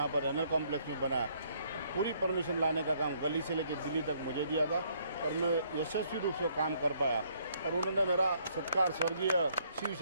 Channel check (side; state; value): both; inverted; correlation -0.67